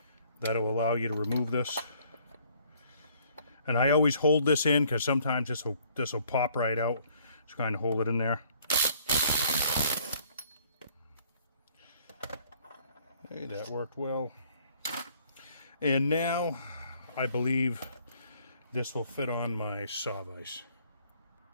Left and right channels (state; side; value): inverted; both; correlation -0.61